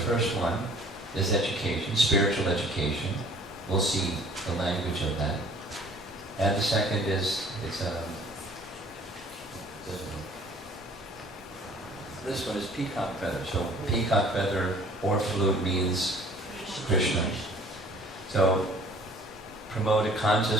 one is education, spiritual education. We'll see the language of that. And the second is, this one is peacock feather. So peacock feather or flute means Krishna. So promote a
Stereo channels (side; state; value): both; normal; correlation 0.53